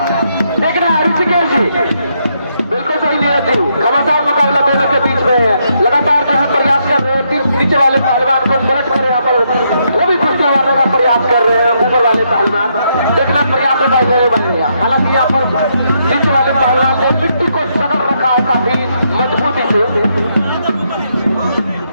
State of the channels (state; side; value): inverted; both; correlation -0.77